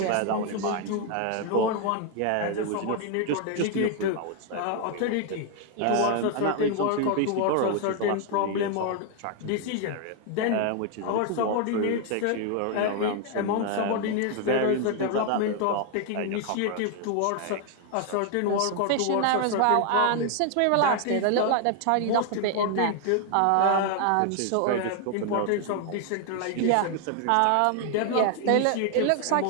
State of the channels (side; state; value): both; different; correlation 0.00